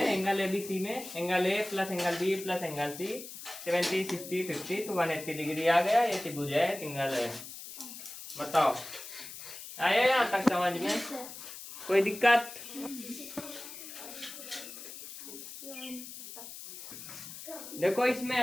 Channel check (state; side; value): noise; left; hiss, 12 dB below the sound